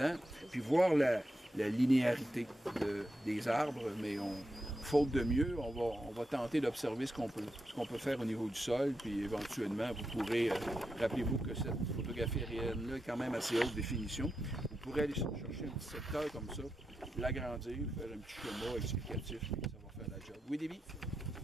puis voir la linéarité des arbres, mais faute de mieux, on va tenter d'observer ce qu'on peut faire au niveau du sol, puis éventuellement, vous pourrez, rappelez-vous que cette photographie aérienne-là est quand même assez haute définition, vous pourrez aller chercher un petit secteur comme ça, l'agrandir, faire un petit schéma explicatif, puis ça va faire la job. Oui, Déby?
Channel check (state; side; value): normal; both; correlation 0.86